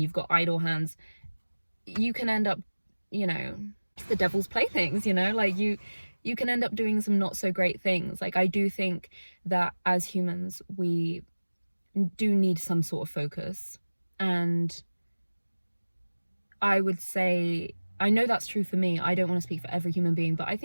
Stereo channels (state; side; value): inverted; both; correlation -1.00